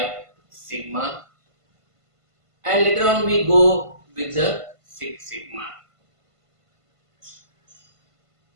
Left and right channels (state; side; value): late; left; 1.5 ms